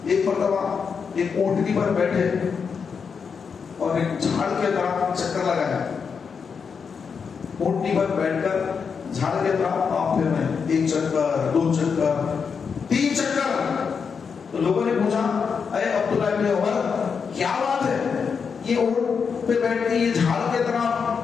ایک مرتبہ ایک اونٹنی پر بیٹھے اور ایک جھاڑ کے طرف چکر لگایا. اونٹنی پر بیٹھ کر جھاڑ کے طرف آپ پھر رہے, 1 چکر 2 چکر 3 چکر. تو لوگوں نے پوچھا اے عبداللہ ابن عمر کیا بات ہے, یہ اونٹ پہ بیٹھ کے یہ جھاڑ کے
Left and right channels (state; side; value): quieter; right; 6.0 dB